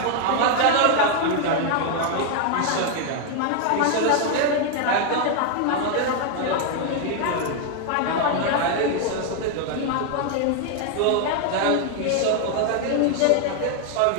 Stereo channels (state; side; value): different; both; correlation 0.00